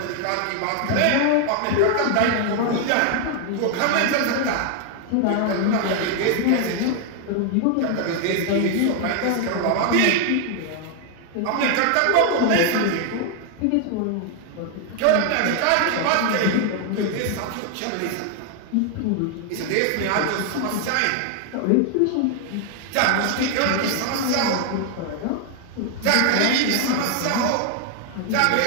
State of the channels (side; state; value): both; different; correlation 0.00